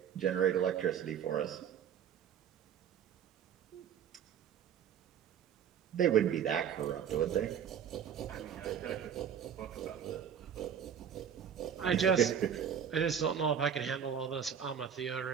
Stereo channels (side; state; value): left; quieter; 8.3 dB